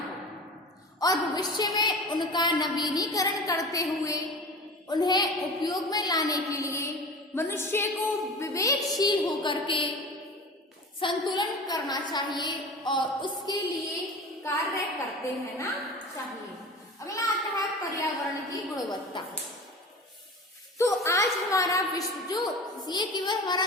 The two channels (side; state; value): both; normal; correlation 0.35